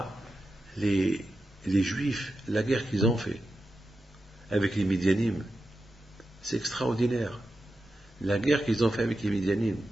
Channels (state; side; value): normal; both; correlation 0.90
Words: les Juifs, la guerre qu'ils ont fait avec les Midianim. C'est extraordinaire. La guerre qu'ils ont fait avec les Midianim.